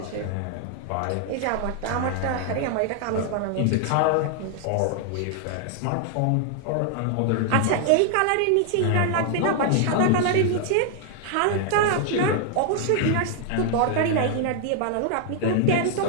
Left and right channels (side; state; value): both; different; correlation 0.00